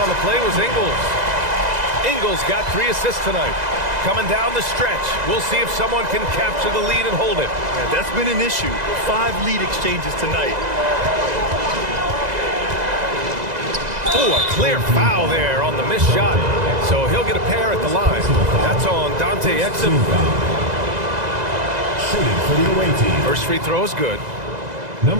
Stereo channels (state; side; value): late; left; 2.0 ms